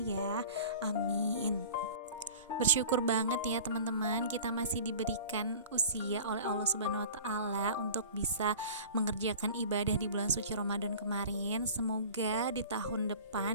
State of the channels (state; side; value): inverted; both; correlation -0.41